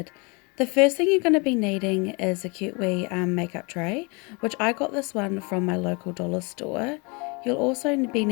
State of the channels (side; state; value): right; quieter; 30.1 dB